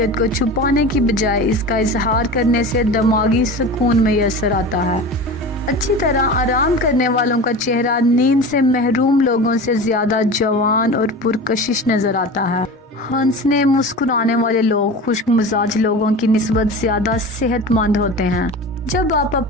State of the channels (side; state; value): both; normal; correlation 0.32